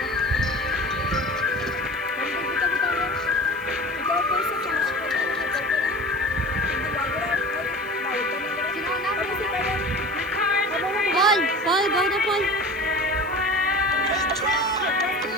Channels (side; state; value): left; noise; hiss, 25 dB below the sound